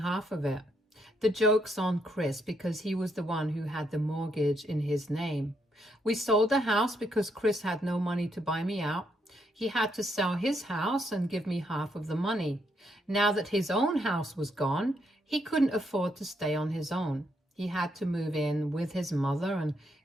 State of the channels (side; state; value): both; normal; correlation 0.76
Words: of it. The joke's on Chris because he was the one who had the mortgage in his name. We sold the house because Chris had no money to buy me out. He had to sell his house and give me half of the money. Now that his own house was gone, he couldn't afford to stay on his own. He had to move in with his mother, and